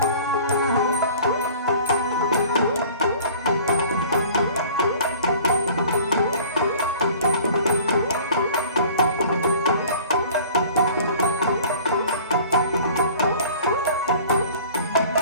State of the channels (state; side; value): inverted; both; correlation -0.47